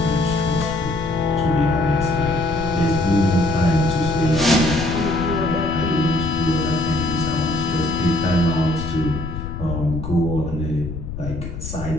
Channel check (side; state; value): left; noise; rumble, 8 dB below the sound